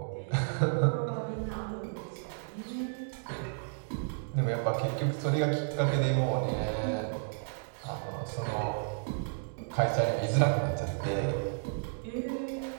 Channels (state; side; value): silent; left; digital silence